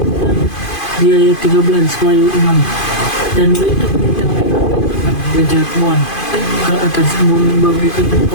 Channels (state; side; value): late; right; 2.5 ms